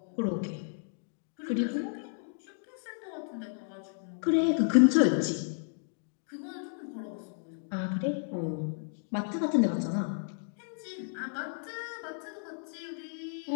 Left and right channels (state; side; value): silent; right; digital silence